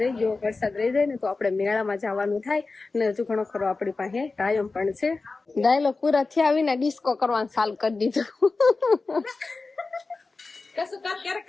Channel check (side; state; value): right; quieter; 3.8 dB